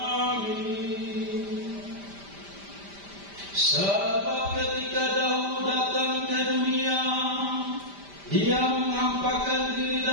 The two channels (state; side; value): late; left; 5.0 ms